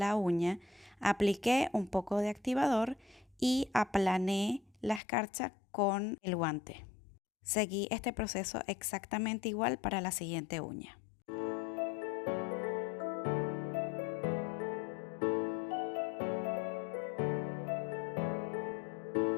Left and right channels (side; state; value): right; drops out; at 5.0 s